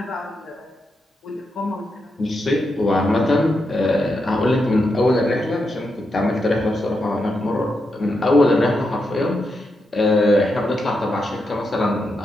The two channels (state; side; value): normal; both; correlation 0.85